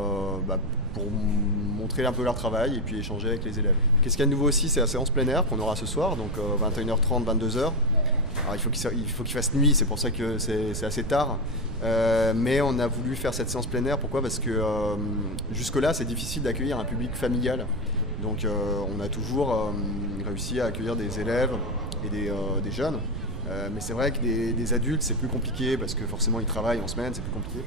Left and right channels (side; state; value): right; noise; rumble, 7 dB below the sound